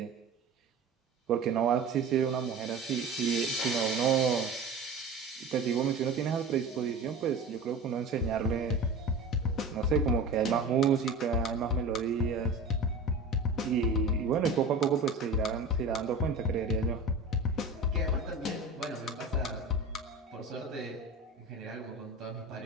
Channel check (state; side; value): quieter; left; 3.3 dB